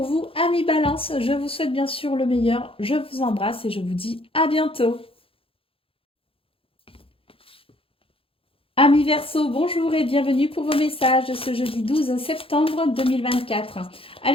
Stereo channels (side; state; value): right; late; 0.27 ms